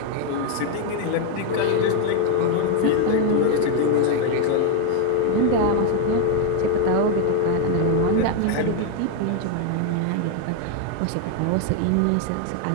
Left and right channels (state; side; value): different; both; correlation 0.01